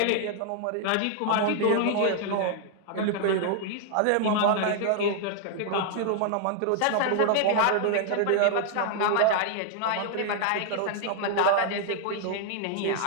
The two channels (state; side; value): different; both; correlation 0.00